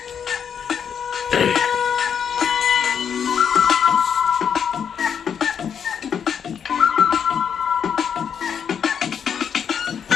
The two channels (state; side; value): quieter; right; 7.6 dB